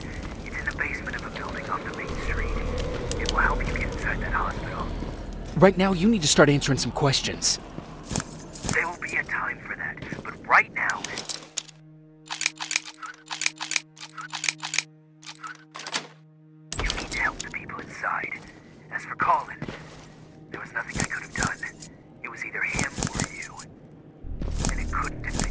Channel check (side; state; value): both; identical; correlation 1.00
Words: It's in the basement of a building off the main street. It will help you get inside that hospital. Right now, you need to start answering some questions. There will be a time for that, but right now... You need to help the people inside. As for Colin, there was nothing I could have done. It was either him or you. And it couldn't have